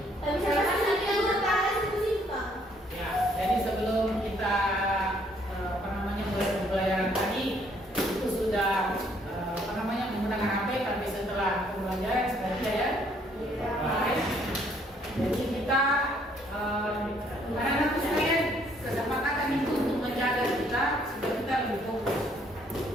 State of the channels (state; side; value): normal; both; correlation 0.65